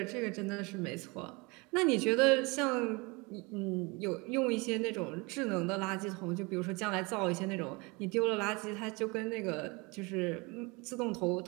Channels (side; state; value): left; quieter; 27.2 dB